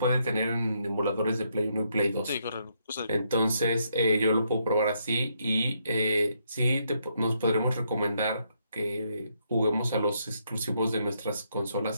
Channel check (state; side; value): inverted; both; correlation -0.76